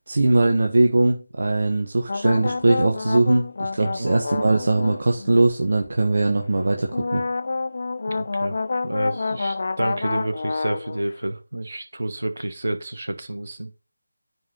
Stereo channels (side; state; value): both; inverted; correlation -0.96